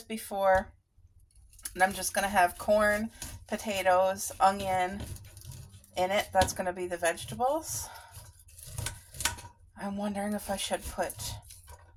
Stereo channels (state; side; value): identical; both; correlation 1.00